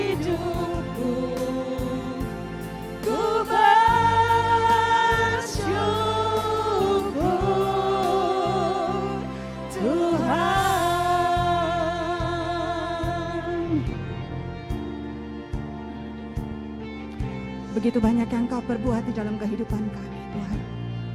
Ku bersyukur Tuhan. Begitu banyak yang Kau perbuat di dalam kehidupan kami, Tuhan.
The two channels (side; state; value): both; identical; correlation 1.00